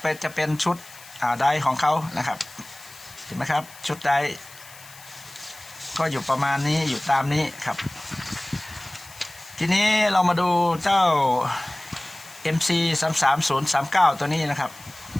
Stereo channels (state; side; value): noise; left; hiss, 20 dB below the sound